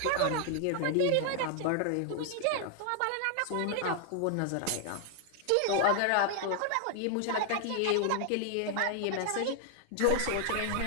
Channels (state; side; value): different; both; correlation 0.00